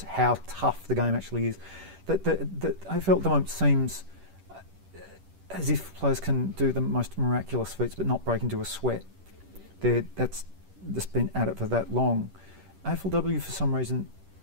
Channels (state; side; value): late; left; 10 ms